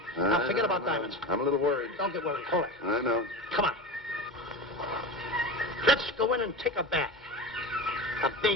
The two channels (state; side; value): normal; both; correlation 0.27